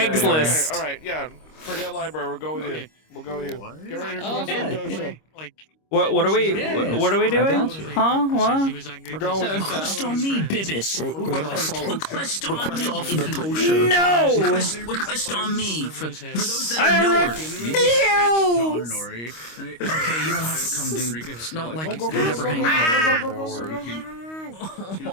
All right, yeah. Forget library. We'll go with you. We'll go with you. Get ready to close the dosha. Like, What are we? What are we doing? Huh? What? We're going with you. Request on me, Bibis. We're gonna follow. Request on Request me. off the Tosha. No! Request on me. For those that I are newer. refuse! Okay, you don't have to come, dude. It's not like you never hang out.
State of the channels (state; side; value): late; right; 25 ms